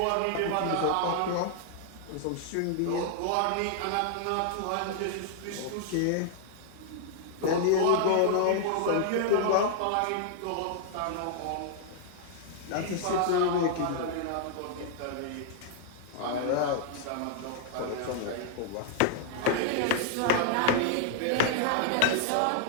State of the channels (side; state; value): both; different; correlation -0.01